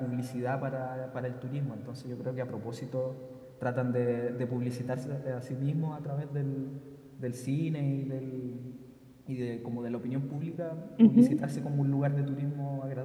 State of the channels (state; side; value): identical; both; correlation 1.00